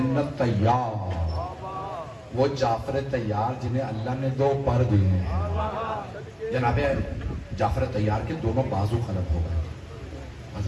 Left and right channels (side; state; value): both; identical; correlation 1.00